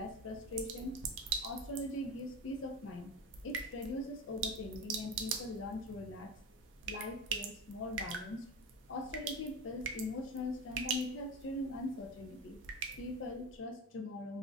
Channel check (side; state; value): both; normal; correlation 0.25